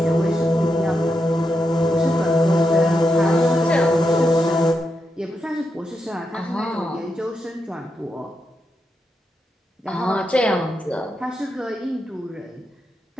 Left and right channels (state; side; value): normal; both; correlation 0.85